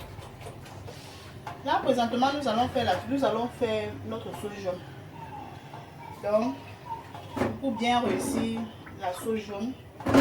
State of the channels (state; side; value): identical; both; correlation 1.00